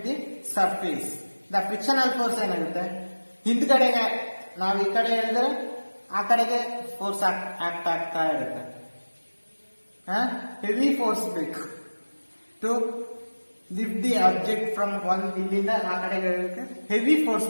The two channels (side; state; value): both; inverted; correlation -1.00